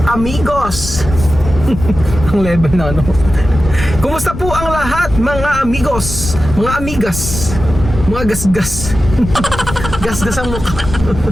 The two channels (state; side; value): noise; left; rumble, 8 dB below the sound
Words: amigos! Ang level na ano. Kumusta po ang lahat, mga amigos, mga amigas, mga gasgas? Gasgas ang mukha.